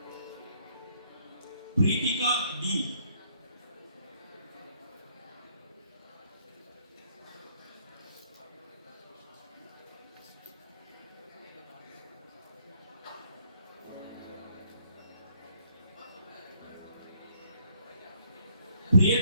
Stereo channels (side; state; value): both; inverted; correlation -0.66